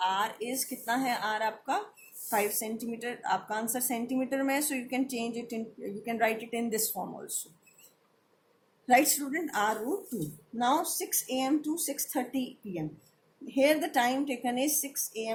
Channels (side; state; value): both; identical; correlation 1.00